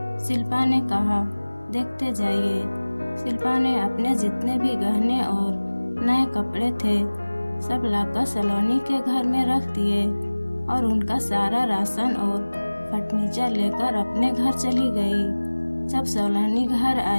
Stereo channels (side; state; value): both; inverted; correlation -1.00